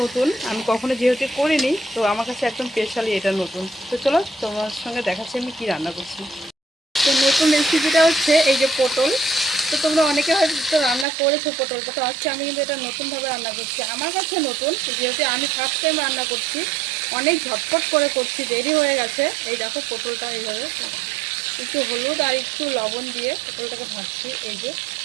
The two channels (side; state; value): left; drops out; at 11.1 s